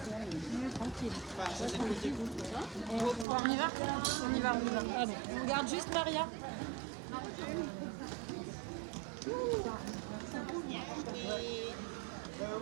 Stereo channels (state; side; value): drops out; left; at 3.2 s